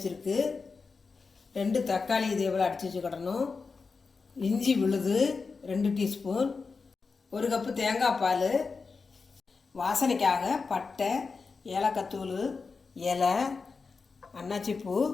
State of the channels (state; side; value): quieter; right; 4.7 dB